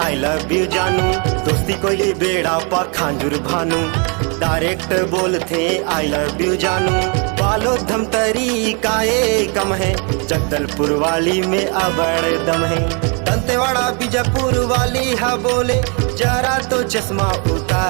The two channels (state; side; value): quieter; left; 35.2 dB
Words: लव यू जानू। दोस्ती कोयली बेड़ा पखांजुर भानु, डायरेक्ट बोलते आई लव यू जानू। बालो धमतरी काए कम है, जगदलपुर वाली में अबड़ दम है। दंतेवाड़ा बीजापुर वाली है बोले जरा तो चश्मा